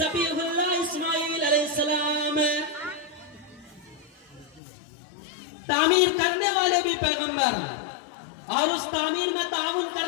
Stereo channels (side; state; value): right; drops out; at 4.6 s